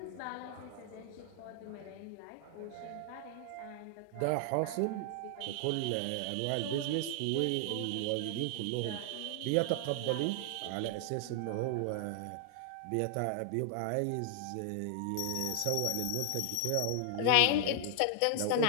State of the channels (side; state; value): both; different; correlation 0.00